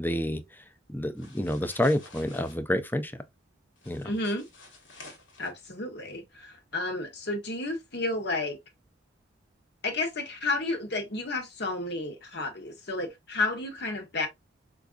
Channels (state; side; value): normal; both; correlation 0.50